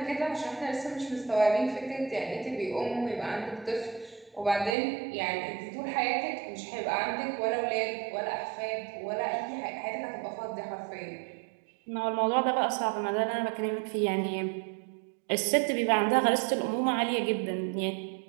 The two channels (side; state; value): left; drops out; at 4.8 s